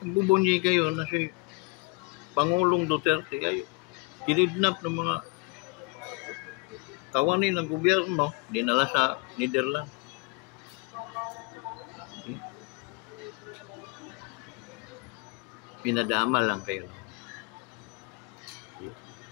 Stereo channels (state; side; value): quieter; right; 28.3 dB